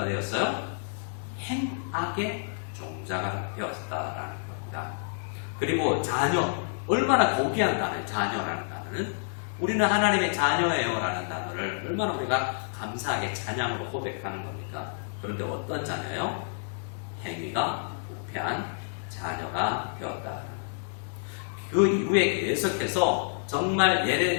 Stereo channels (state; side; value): silent; right; digital silence